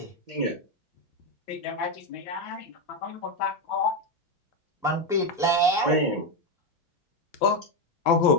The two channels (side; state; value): both; normal; correlation 0.09